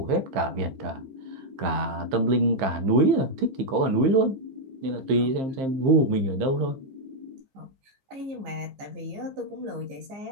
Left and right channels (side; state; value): left; late; 15 ms